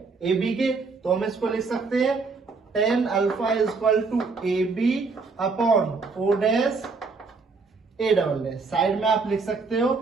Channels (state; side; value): quieter; left; 4.4 dB